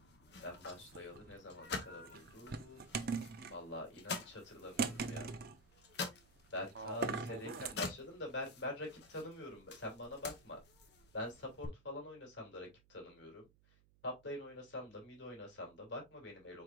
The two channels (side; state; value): right; noise; hum, 27 dB below the sound